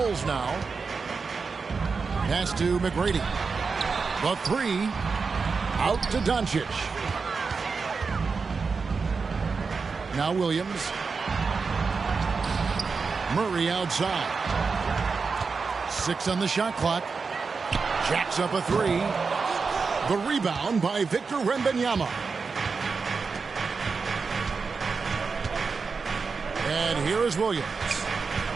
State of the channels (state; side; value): quieter; left; 4.9 dB